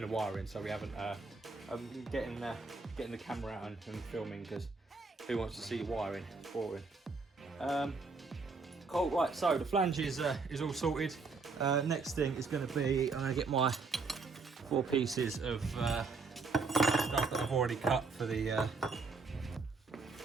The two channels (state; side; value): quieter; left; 4.2 dB